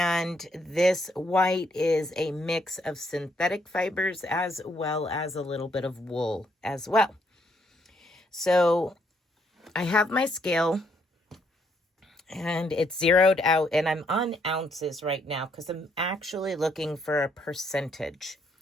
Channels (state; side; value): normal; both; correlation 0.72